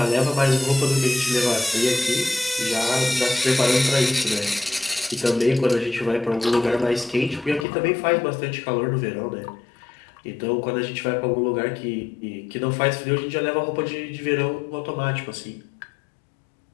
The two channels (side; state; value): right; drops out; at 7.7 s